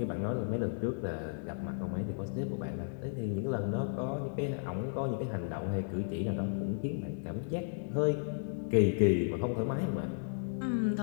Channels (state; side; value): silent; right; digital silence